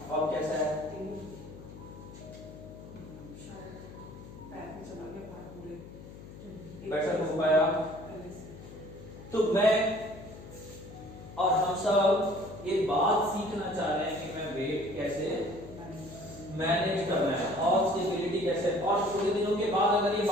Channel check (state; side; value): noise; left; hum, 15 dB below the sound